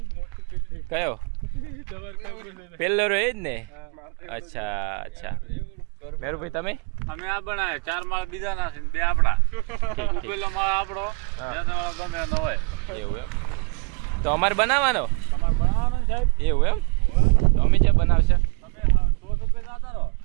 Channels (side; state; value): left; quieter; 32.0 dB